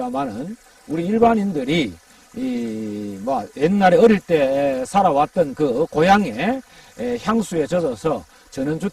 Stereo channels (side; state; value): both; identical; correlation 1.00